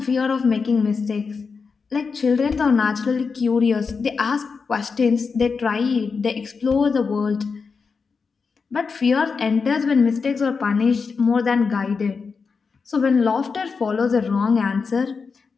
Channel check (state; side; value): quieter; right; 5.1 dB